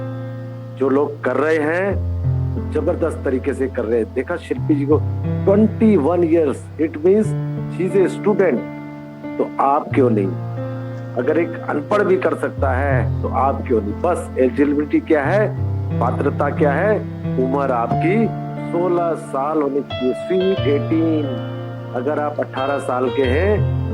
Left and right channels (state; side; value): identical; both; correlation 1.00